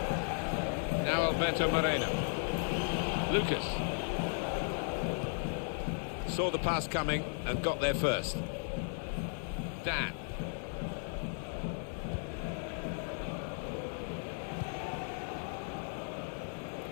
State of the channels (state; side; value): silent; right; 54 dB below the other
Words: Now Alberto Moreno. Lucas. Saw the pass coming and got there first. Dan.